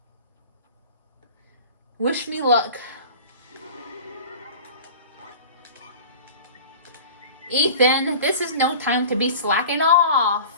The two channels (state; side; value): inverted; both; correlation -0.39